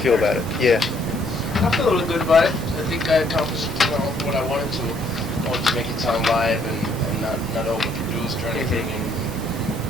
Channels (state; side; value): normal; both; correlation 0.66